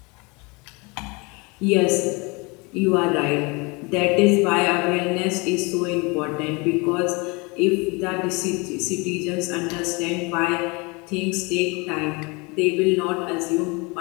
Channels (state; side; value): quieter; right; 28.0 dB